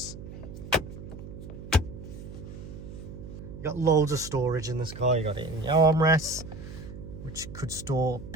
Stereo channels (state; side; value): noise; right; hum, 12 dB below the sound